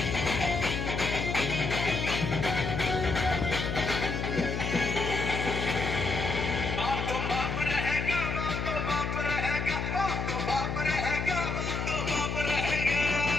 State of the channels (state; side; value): noise; left; hum, 2 dB below the sound